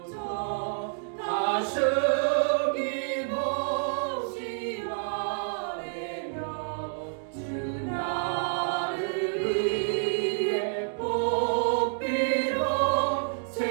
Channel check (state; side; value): silent; left; digital silence